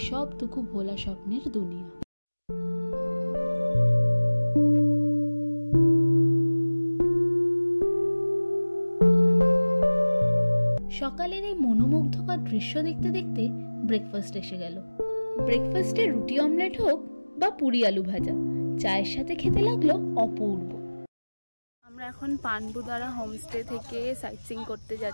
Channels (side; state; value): both; inverted; correlation -1.00